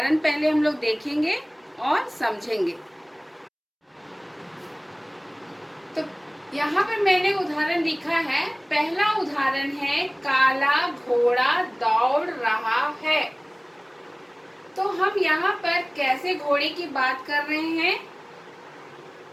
पहले हम लोग देखेंगे और समझेंगे। तो यहाँ पर मैंने उदाहरण लिखा है। पहला उदाहरण है काला घोड़ा दौड़ रहा है। तो हम यहाँ पर कैसे घोड़े की बात कर रहे हैं?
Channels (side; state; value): both; identical; correlation 1.00